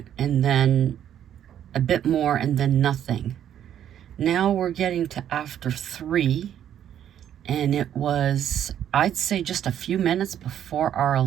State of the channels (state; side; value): quieter; left; 10.2 dB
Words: and then a bit more, and then nothing. Now we're getting to after 3, and it was, I'd say, just a few minutes before our